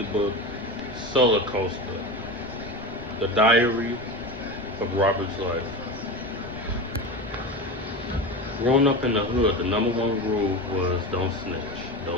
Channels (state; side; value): noise; right; rumble, 17 dB below the sound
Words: book, Soulacoaster, the diary of Robert's life. Growing up in the hood, the number one rule was don't snitch,